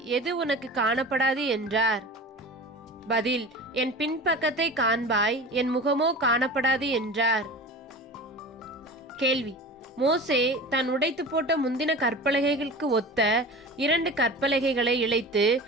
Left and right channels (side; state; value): both; normal; correlation 0.35